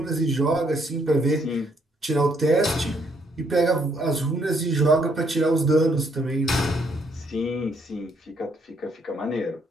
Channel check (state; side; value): normal; both; correlation 0.70